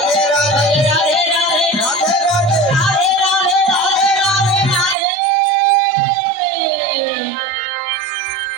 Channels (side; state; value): left; drops out; at 5.0 s